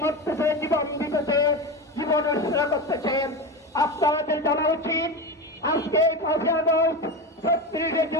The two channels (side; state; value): both; normal; correlation 0.21